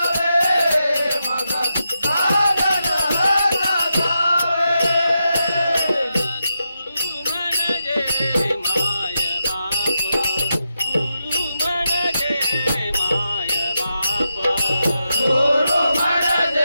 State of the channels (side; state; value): both; inverted; correlation -0.86